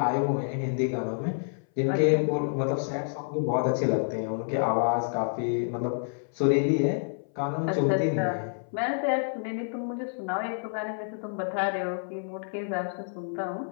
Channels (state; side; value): silent; right; 58 dB below the other